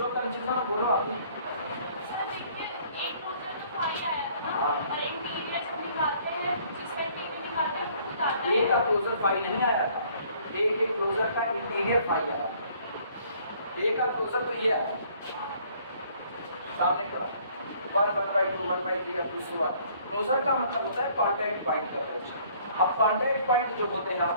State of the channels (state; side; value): inverted; both; correlation -0.59